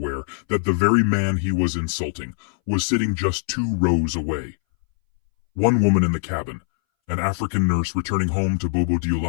that the very man he was insulting was sitting just 2 rows away. One woman in the cabin, An African nurse returning home to Bobo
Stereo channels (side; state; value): right; silent; 62 dB below the other